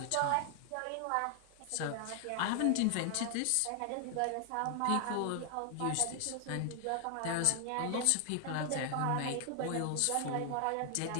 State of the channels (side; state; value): both; different; correlation 0.00